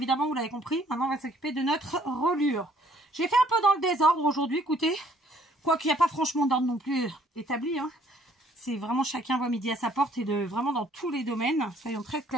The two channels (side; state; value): both; normal; correlation 0.62